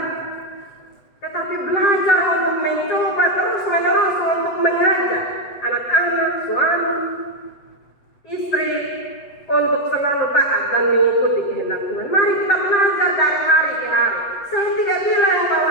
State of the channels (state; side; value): late; right; 8.0 ms